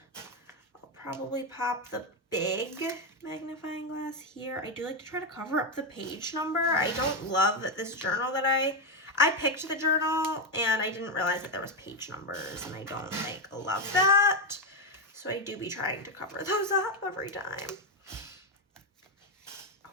I'll probably pop the big magnifying glass here. I do like to try to cover up the page number. I don't love that this journal that I picked the journal and I didn't realize that there was page numbers, and I don't like love that, so I do be trying to cover those up every time.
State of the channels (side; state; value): both; normal; correlation 0.07